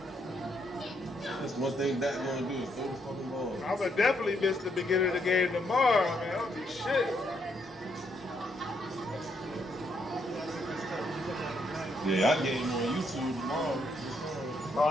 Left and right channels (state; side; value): normal; both; correlation 0.75